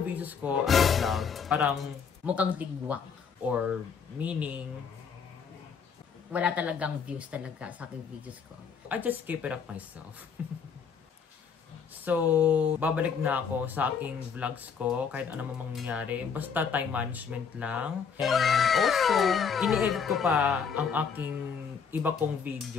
videos ko as a vlog, parang Mukhang tigwak. or meaning, Wala talagang views talaga sa aking videos ko. I just keep it up myself. So, babalik na ako sa aking vlogs ko kahit ano mang mangyari. Basta time management lang. And also, ini-edit ko pa ang aking iba kong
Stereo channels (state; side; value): quieter; right; 6.4 dB